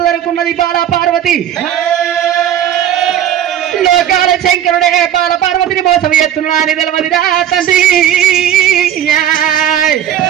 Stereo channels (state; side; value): quieter; left; 10.5 dB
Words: అనుకున్నది బాలా పార్వతి. లోకాల శంకరుడే బాల పార్వతిని మోసం ఎత్తున్నా అని తెలవదిరా తండ్రి.